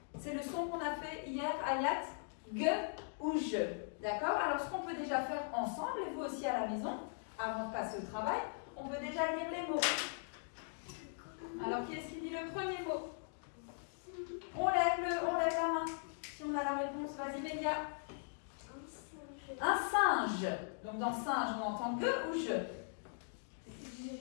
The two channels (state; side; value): silent; right; digital silence